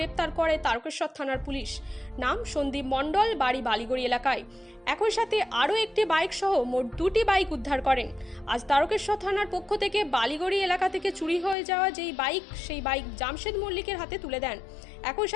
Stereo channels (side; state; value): right; drops out; at 11.6 s